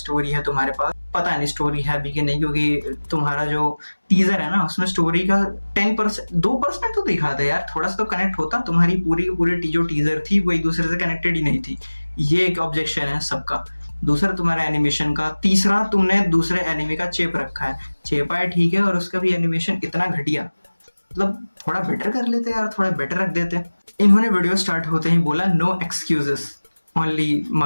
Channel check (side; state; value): both; inverted; correlation -1.00